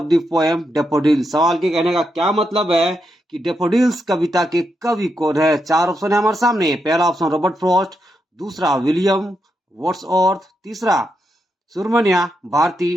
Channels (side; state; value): both; normal; correlation 0.83